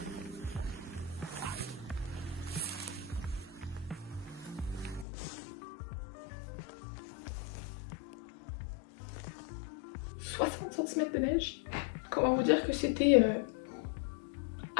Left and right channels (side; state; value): right; drops out; at 5.1 s